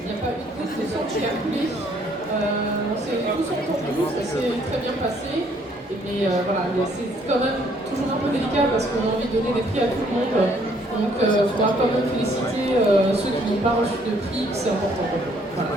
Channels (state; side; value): normal; both; correlation 0.64